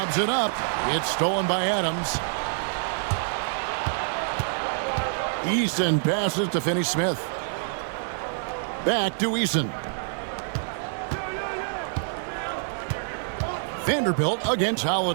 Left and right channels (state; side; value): silent; left; 61 dB below the other